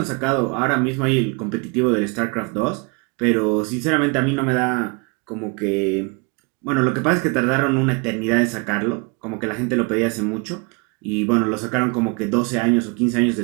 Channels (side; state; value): left; quieter; 31.1 dB